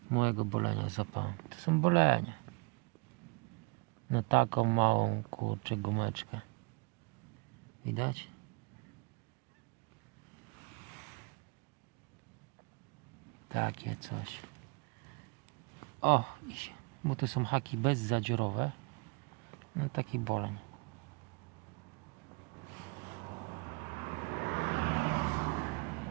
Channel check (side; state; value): left; quieter; 30.2 dB